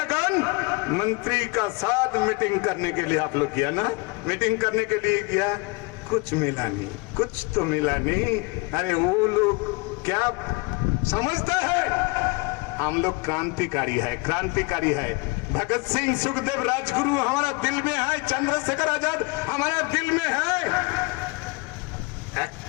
मंत्री का साथ मीटिंग करने के लिए आप लोग किया ना, मीटिंग करने के लिए किया, कुछ मिला नहीं, कुछ तो मिला नहीं। अरे वो लोग क्या समझता है, हम लोग क्रांतिकारी है, क्रांतिकारी है। भगत सिंह, सुखदेव, राजगुरु हमारा दिल में है, चंद्रशेखर आजाद हमारा दिल में है।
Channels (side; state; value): right; quieter; 27.4 dB